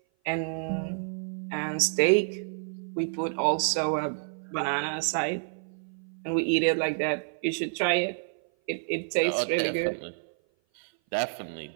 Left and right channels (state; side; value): silent; left; 56 dB below the other